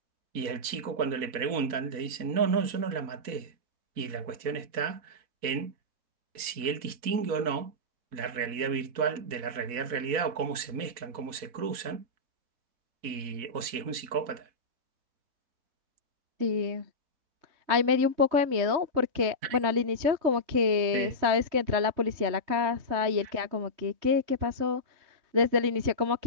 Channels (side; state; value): left; late; 4.1 ms